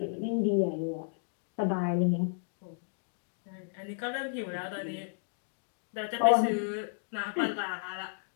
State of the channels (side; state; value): right; silent; digital silence